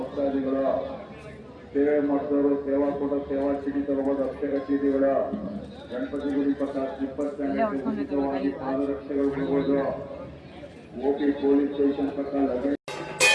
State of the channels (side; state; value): both; identical; correlation 1.00